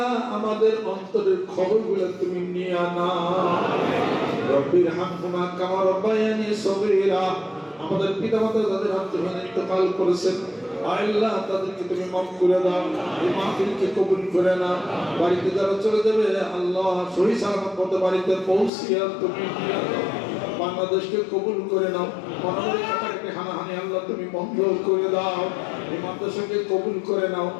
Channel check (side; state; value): right; drops out; at 18.7 s